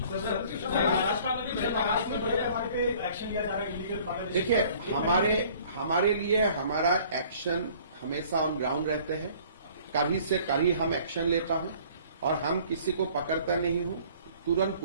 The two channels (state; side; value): inverted; both; correlation -0.53